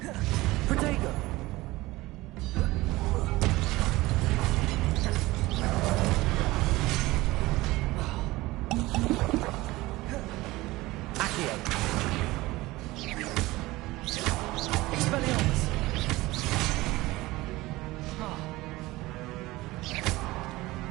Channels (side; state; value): left; quieter; 19.5 dB